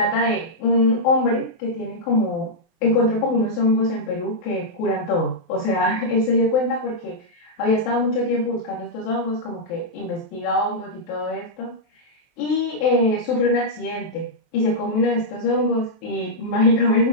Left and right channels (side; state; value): right; late; 23 ms